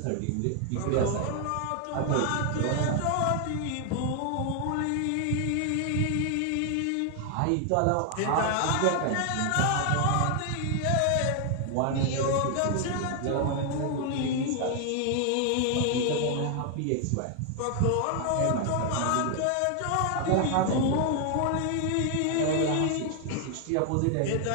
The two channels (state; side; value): different; both; correlation 0.00